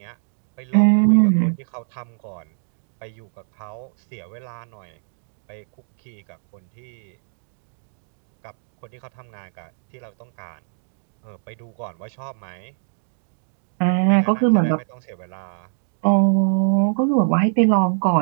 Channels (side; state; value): left; silent; digital silence